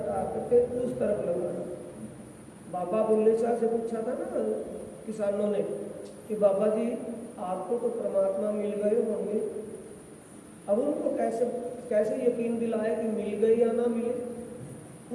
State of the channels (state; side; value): identical; both; correlation 1.00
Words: करके उस तरफ लगाना। बाबा बुल्ले शाह से पूछा था ना किसानों ने कि बाबा जी आपको तो परमात्मा मिल गए होंगे, अब उनको कैसे यकीन दिलाए कि मिल गए या ना मिले,